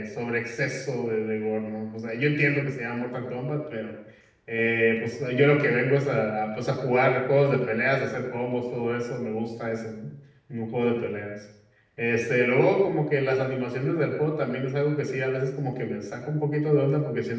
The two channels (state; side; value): identical; both; correlation 1.00